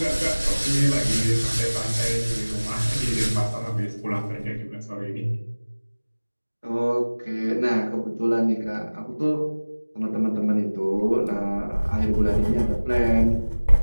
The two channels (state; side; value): inverted; both; correlation -1.00